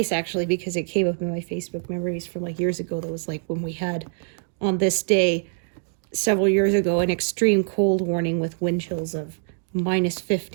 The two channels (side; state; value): left; silent; digital silence